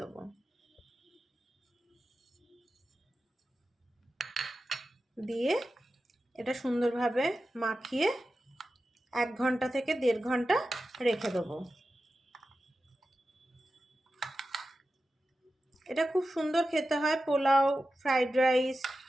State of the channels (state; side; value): normal; both; correlation 0.92